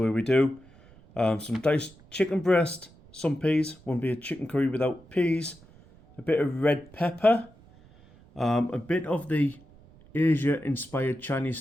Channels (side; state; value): right; noise; rumble, 25 dB below the sound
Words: we do. Some diced chicken breast, some peas. Wouldn't be a chicken curry without peas. A bit of red pepper. A bit of the Asia-inspired Chinese